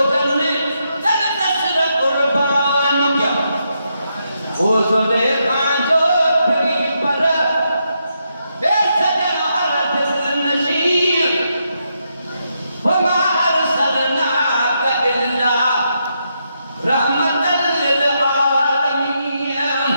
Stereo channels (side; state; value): both; inverted; correlation -0.81